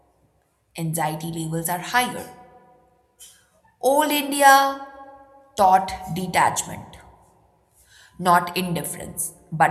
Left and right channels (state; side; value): identical; both; correlation 1.00